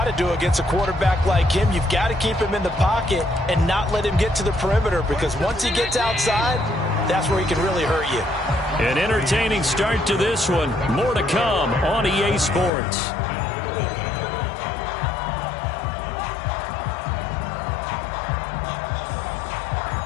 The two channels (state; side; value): drops out; right; at 12.7 s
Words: to do against a quarterback like him. You've got to keep him in the pocket and not let him get to the perimeter, because once he gets outside, that's where he can really hurt you. An entertaining start to this one. More to come on EA Sports.